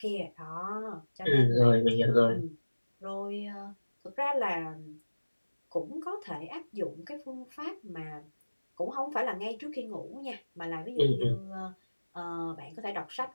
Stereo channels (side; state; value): both; inverted; correlation -1.00